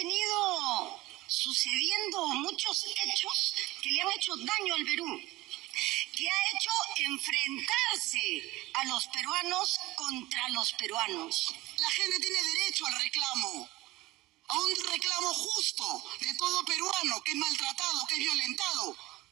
sucediendo muchos hechos que le han hecho daño al Perú, que ha hecho enfrentarse a los peruanos contra los peruanos. La gente tiene derecho al reclamo, a un reclamo justo de todo peruano que es maltratado, que es violentado,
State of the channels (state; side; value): quieter; left; 18.8 dB